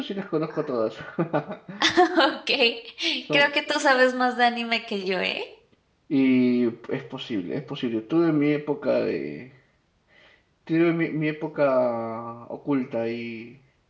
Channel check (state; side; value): identical; both; correlation 1.00